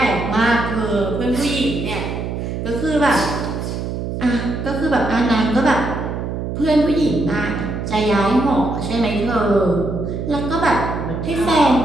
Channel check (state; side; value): noise; right; hum, 4 dB below the sound